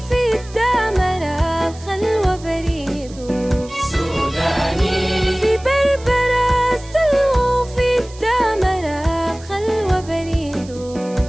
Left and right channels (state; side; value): noise; right; hiss, 21 dB below the sound